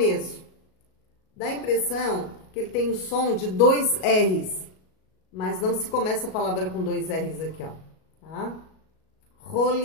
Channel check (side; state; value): right; late; 37 ms